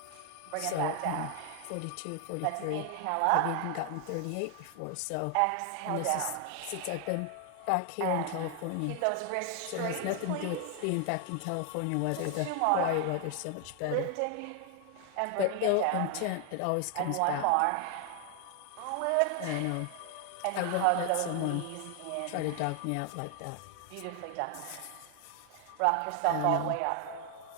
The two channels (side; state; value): both; different; correlation 0.00